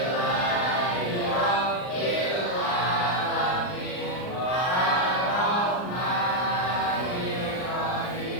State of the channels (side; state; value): right; late; 39 ms